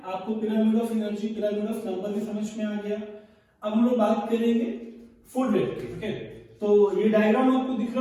आपको pyramid of energy, pyramid of number भी समझ में आ गया. अब हम लोग बात करेंगे फूड वेब की. ओके, तो ये डायग्राम आपको दिख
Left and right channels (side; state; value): both; identical; correlation 1.00